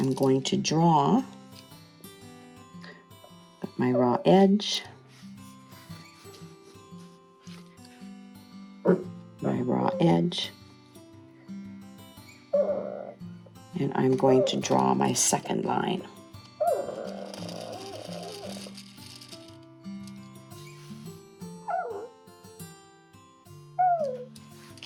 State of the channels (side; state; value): both; identical; correlation 1.00